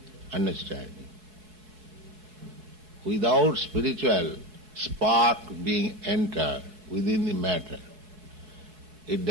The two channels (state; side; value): late; left; 4.7 ms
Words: understanding. Without spiritual spark being entered within the matter, it